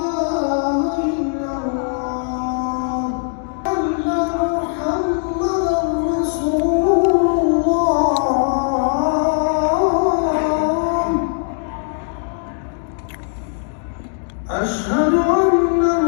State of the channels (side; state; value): right; silent; 66 dB below the other